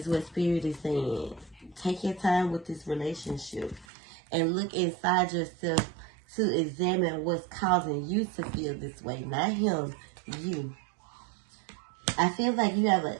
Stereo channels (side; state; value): left; drops out; at 3.9 s